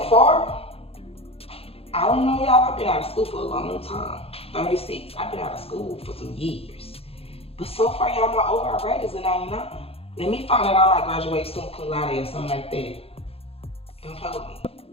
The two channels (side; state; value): right; late; 0.28 ms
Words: far, I don't know, y'all. I've been out of school for a long time. 36. I've been out of school for some years. But so far, y'all, my overall grade is a 99. Let me find out I might graduate soon, cum laude or something like that. Don't play with me.